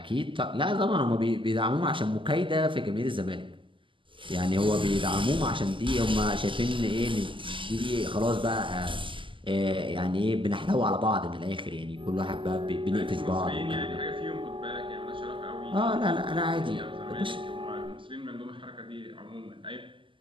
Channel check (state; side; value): late; left; 0.25 ms